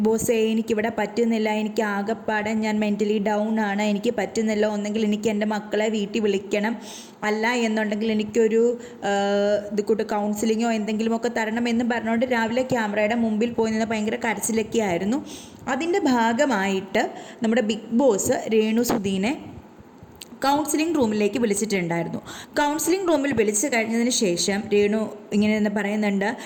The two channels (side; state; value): both; identical; correlation 1.00